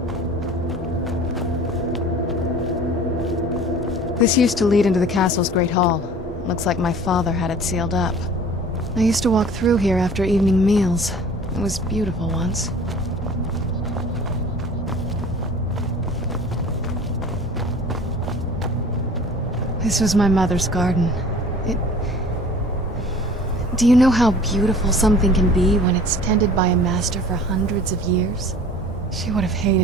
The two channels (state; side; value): normal; both; correlation 0.45